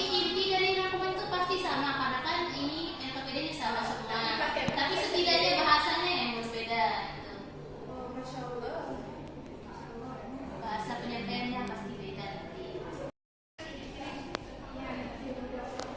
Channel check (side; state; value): both; identical; correlation 1.00